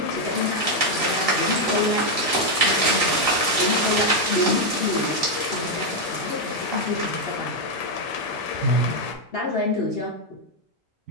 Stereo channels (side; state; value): both; normal; correlation 0.02